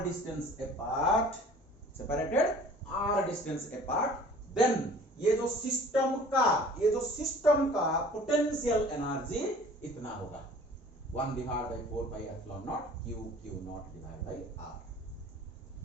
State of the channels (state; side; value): normal; both; correlation 0.48